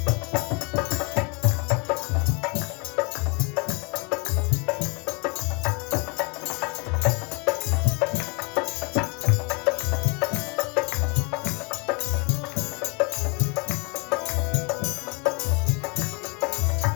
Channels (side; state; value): right; quieter; 31.5 dB